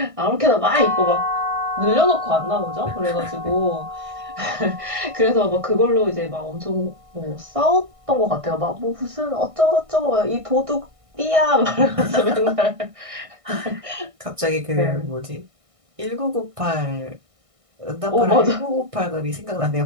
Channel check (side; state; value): left; late; 1.6 ms